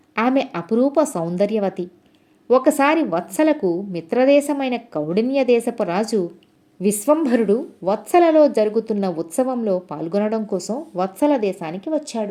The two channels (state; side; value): identical; both; correlation 1.00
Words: ఆమె అపురూప సౌందర్యవతి. ఒకసారి వత్సలకు మిత్రదేశమైన కౌడిన్య దేశపు రాజు విశ్వంభరుడు వత్సలలో జరుగుతున్న ఉత్సవంలో పాల్గొనడం కోసం వత్సల దేశానికి